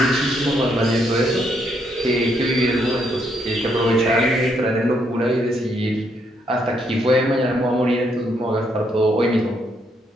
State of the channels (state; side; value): normal; both; correlation 0.74